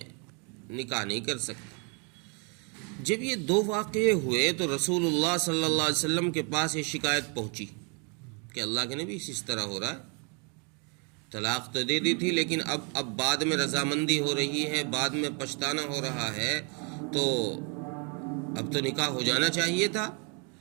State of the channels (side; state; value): left; quieter; 35.5 dB